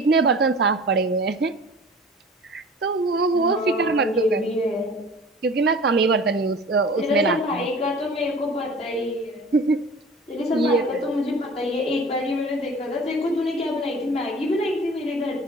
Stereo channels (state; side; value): normal; both; correlation 0.42